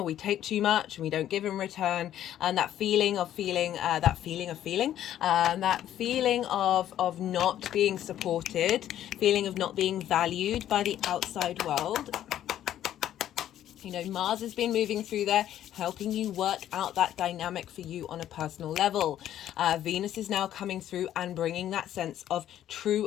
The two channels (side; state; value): right; quieter; 11.6 dB